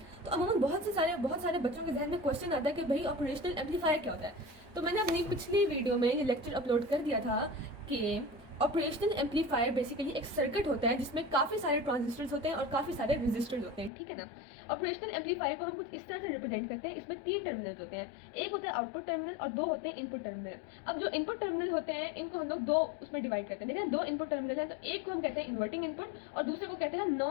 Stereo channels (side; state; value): right; drops out; at 13.9 s